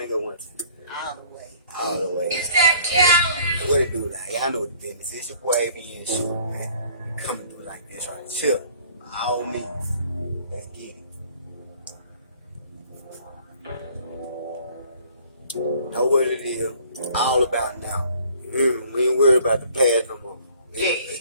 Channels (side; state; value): both; inverted; correlation -0.55